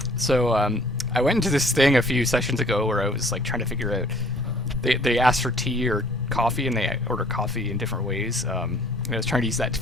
So, I went into this thing a few sessions ago where I was like trying to figure out. They asked for tea or coffee, and they order coffee in different ways. And I was trying to use that to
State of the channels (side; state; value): both; normal; correlation 0.55